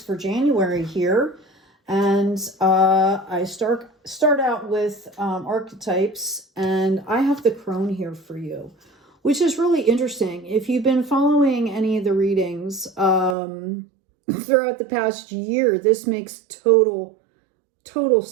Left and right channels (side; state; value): left; drops out; at 13.4 s